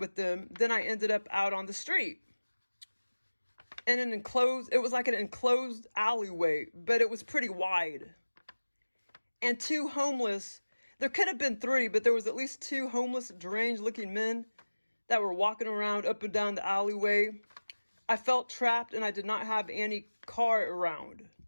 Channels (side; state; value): both; inverted; correlation -1.00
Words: them. Then I ended up out on the street. And it was like an enclosed alleyway, but it was pretty wide. And 2 homeless, there could have been 3, but there was at least 2 homeless, deranged looking men that were walking around up and down the alleyway. I felt trapped and I did not have any car around.